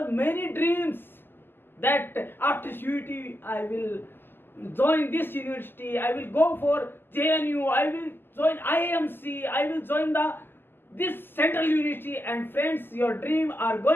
many dreams that after CUET I will join this university, I will go for JNU, I will join IMC, I will join this central university, and friends, your dream are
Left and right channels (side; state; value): right; late; 0.098 ms